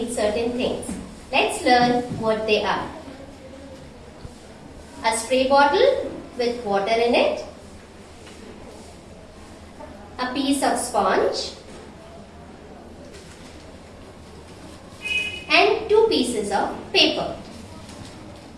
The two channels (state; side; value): identical; both; correlation 1.00